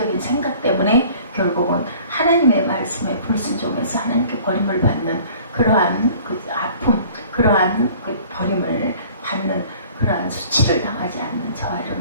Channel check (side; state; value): both; inverted; correlation -0.50